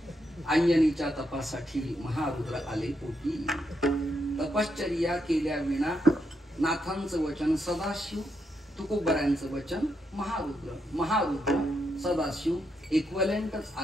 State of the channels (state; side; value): normal; both; correlation 0.81